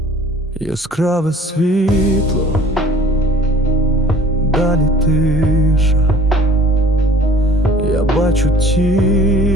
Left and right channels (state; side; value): normal; both; correlation 0.52